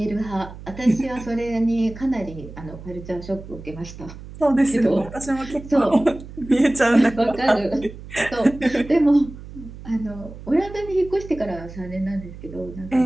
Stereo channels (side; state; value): right; noise; hum, 14 dB below the sound